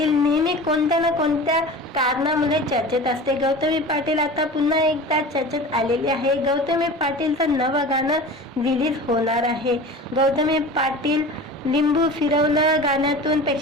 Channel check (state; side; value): normal; both; correlation 0.36